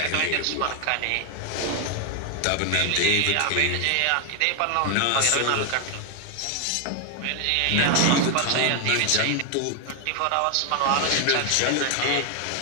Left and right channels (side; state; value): both; different; correlation 0.00